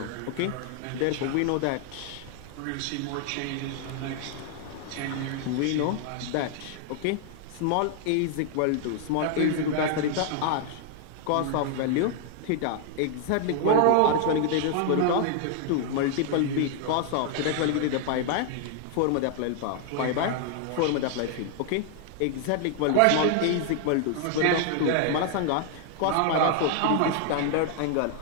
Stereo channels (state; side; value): different; both; correlation 0.00